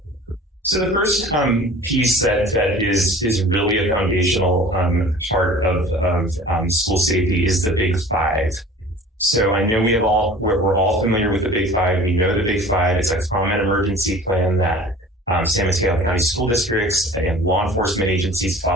So the first piece that is really a foundational part of school safety is the Big Five. So I know we're all familiar with the Big Five. We know the Big Five. It's a common emergency plan that San Mateo County school districts and law enforcement agencies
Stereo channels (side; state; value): both; normal; correlation 0.45